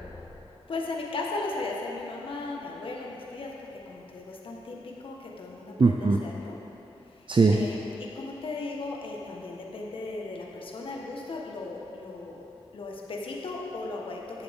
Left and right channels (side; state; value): both; normal; correlation 0.80